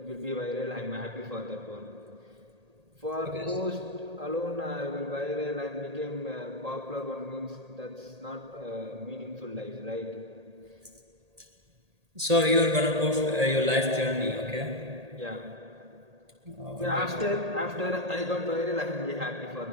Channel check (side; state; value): left; late; 1.8 ms